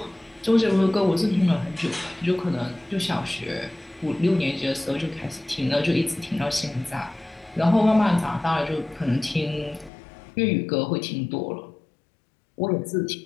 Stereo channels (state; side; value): drops out; right; at 9.9 s